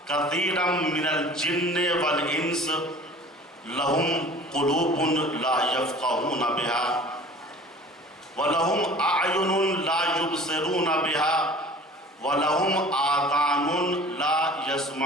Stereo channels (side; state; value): both; normal; correlation 0.45